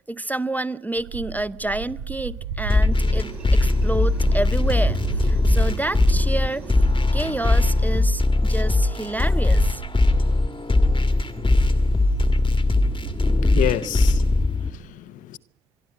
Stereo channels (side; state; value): both; normal; correlation 0.89